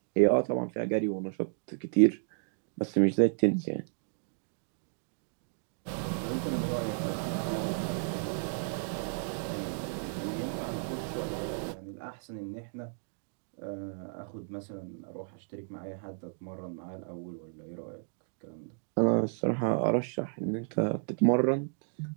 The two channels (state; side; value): silent; left; digital silence